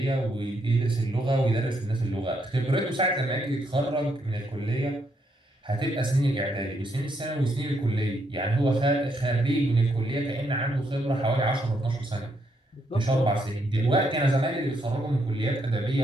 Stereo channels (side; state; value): both; normal; correlation 0.76